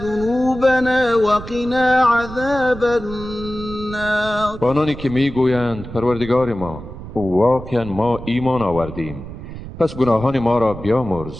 وقنا عذاب النار. آنانی که میگویند پروردگار ما، واقعا ما ایمان آوردیم، پس گناهان ما را بیامرز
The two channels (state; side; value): noise; right; rumble, 12 dB below the sound